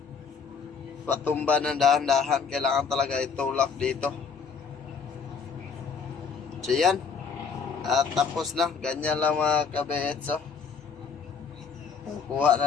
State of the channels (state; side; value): quieter; right; 5.9 dB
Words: patumba ng dahan-dahan. Kailangan talaga itulak dito. So yan. At tapos na. Ganyan lang mga kabits. Kuha